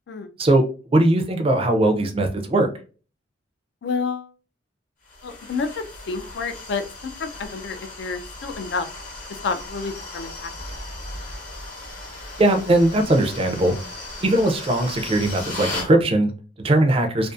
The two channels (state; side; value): normal; both; correlation 0.62